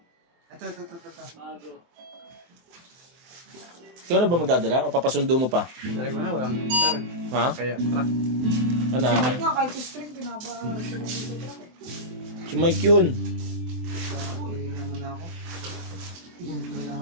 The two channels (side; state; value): left; late; 23 ms